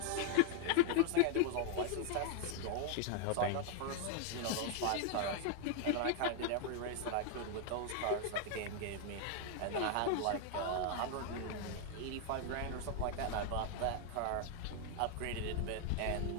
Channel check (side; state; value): both; different; correlation 0.00